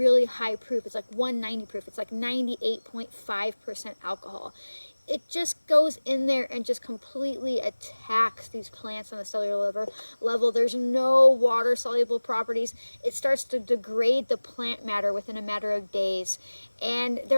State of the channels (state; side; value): inverted; both; correlation -1.00